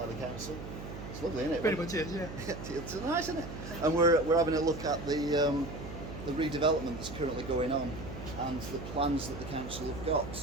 the council. It's lovely, isn't it? Pretty much is, yeah. It's nice, isn't it? And we're having a look at the redevelopment that's currently going on and the plans that the council have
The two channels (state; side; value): noise; right; hum, 10 dB below the sound